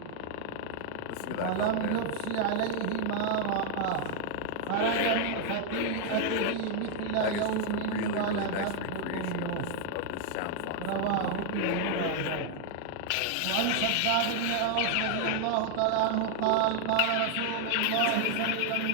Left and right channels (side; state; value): both; different; correlation 0.00